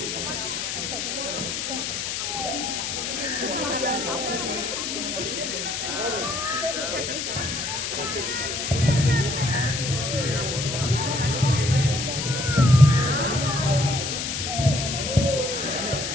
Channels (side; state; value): left; noise; hiss, 3 dB below the sound